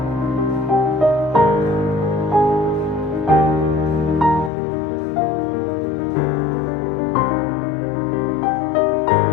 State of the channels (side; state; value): right; drops out; at 4.5 s